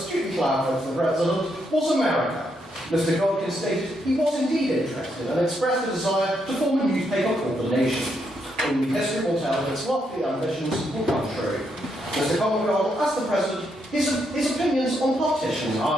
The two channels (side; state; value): both; normal; correlation 0.78